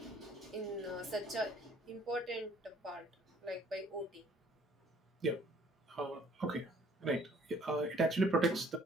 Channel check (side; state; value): both; normal; correlation 0.58